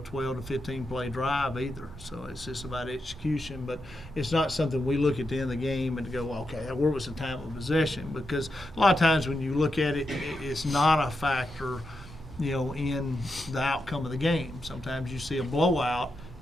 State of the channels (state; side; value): normal; both; correlation 0.86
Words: to 15 play drive either. So it's just about execution, but it's not something we look at the end of the game and go, okay, where was the time of possession? Because a lot of times when you look at it, it's not a factor in the outcome of the game. Sometimes you see a blowout